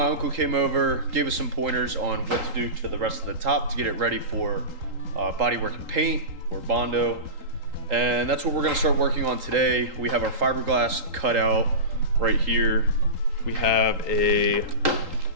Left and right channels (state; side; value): late; left; 3.8 ms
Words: uncle came over, gave us some pointers on what to do to the rest of the top to get it ready for bodywork and paint or Bondo. And that's what we're gonna start working on today. We have our fiberglass cut out right here. We have